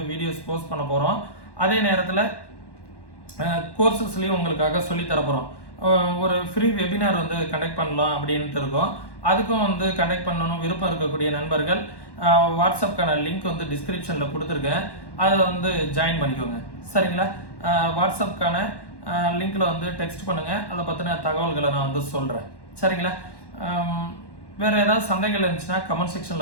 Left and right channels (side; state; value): right; late; 1.1 ms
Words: வீடியோஸ் போஸ்ட் பண்ண போகிறோம். அதே நேரத்தில் கோர்சஸ்லேயும் உங்களுக்காக சொல்லித்தர போகிறோம். ஒரு ஃப்ரீ வெபினார் வந்து கண்டக்ட் பண்ணலாம் அப்படின்ட்டு இருக்கோம். அதுக்கும் வந்து கண்டக்ட் பண்ணணும் விருப்பம் இருக்கக்கூடிய நண்பர்கள் வாட்ஸ்அப்க்கான லிங்க் வந்து டிஸ்கிரிப்ஷனில் கொடுத்துருக்கேன், அதில் வந்து ஜாயின் பண்ணிக்கோங்க. சரிங்களா? வாட்ஸ்அப்க்கான லிங்க்கில் வந்து டெக்ஸ்ட் பண்ணுங்கள், அதை பற்றின தகவல்களை நான் வந்து சொல்கிறேன். சரிங்களா? வேறு ஏதாவது சந்தேகங்கள் இருந்துச்சுன்னா கமெண்ட்